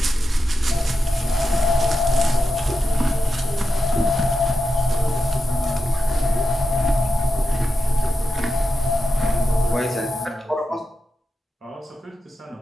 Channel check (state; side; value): normal; both; correlation 0.90